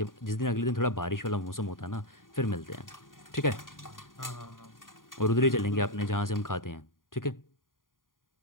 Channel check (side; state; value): right; late; 0.90 ms